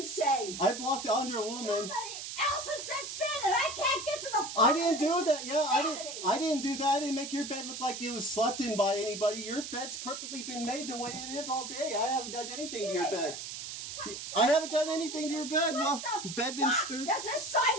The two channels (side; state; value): right; noise; hiss, 8 dB below the sound